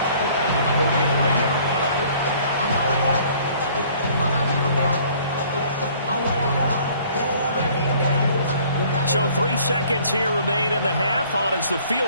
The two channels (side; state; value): both; inverted; correlation -0.56